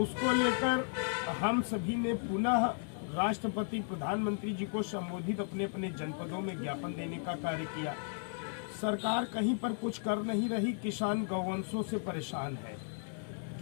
उसको लेकर हम सभी ने पुनः राष्ट्रपति, प्रधानमंत्री जी को संबोधित अपने अपने जनपदों में ज्ञापन देने का कार्य किया। सरकार कहीं पर कुछ कर नहीं रही। किसान गौवंशों से परेशान है।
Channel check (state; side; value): silent; right; 55 dB below the other